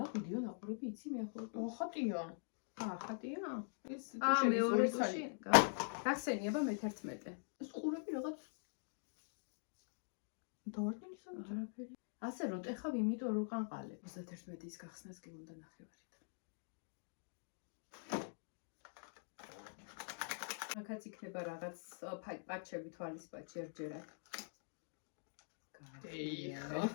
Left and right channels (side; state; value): right; silent; digital silence